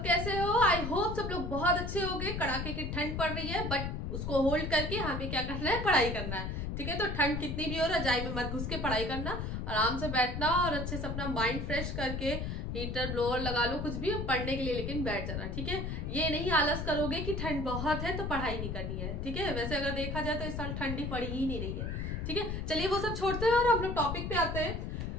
कैसे हो। आई होप सब लोग बहुत अच्छे होंगे। कड़ाके की ठंड पड़ रही है बट उसको होल्ड करके हमें क्या करना है, पढ़ाई करना है। ठीक है, तो ठंड कितनी भी हो, रजाई में मत घुस के पढ़ाई करना, आराम से बैठना और अच्छे से अपना माइंड फ्रेश करके हीटर ब्लोअर लगा लो, कुछ भी पढ़ने के लिए, लेकिन बैठ जाना। ठीक है, ये नहीं आलस करोगे कि ठंड बहुत है तो पढ़ाई नहीं करनी है। ठीक है, वैसे अगर देखा जाए तो इस साल ठंडी पड़ी ही नहीं रही है। ठीक है, चलिए वो सब छोड़ते हैं और हम लोग टॉपिक पे आते हैं,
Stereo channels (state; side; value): noise; left; rumble, 3 dB below the sound